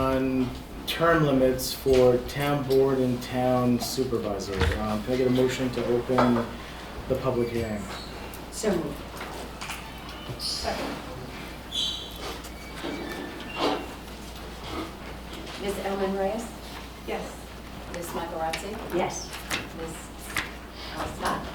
term limits for town board and town supervisor. Can I get a motion to open the public hearing? So moved. Second. Ms. Elman Reyes? Yes. Ms. Michaelozzi? Yes. Ms. Scott?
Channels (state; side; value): identical; both; correlation 1.00